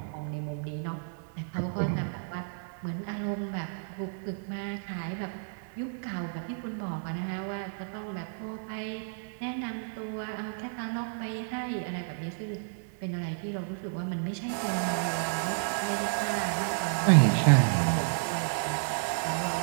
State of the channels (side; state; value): left; silent; digital silence